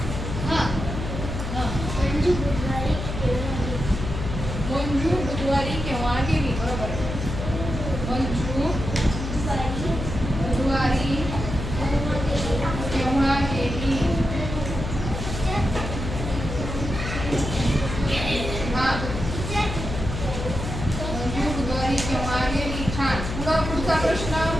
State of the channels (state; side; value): noise; left; hum, 5 dB below the sound